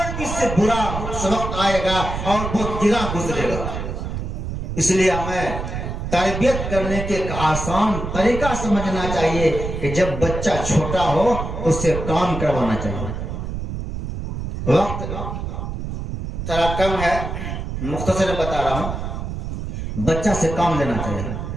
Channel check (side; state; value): right; noise; rumble, 5 dB below the sound